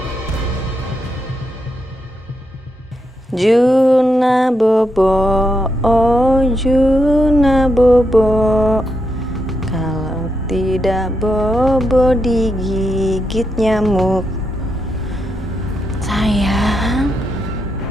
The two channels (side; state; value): both; normal; correlation 0.82